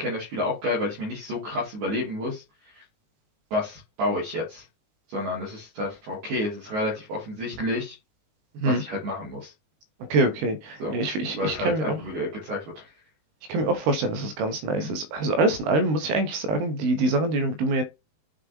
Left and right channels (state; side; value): late; left; 19 ms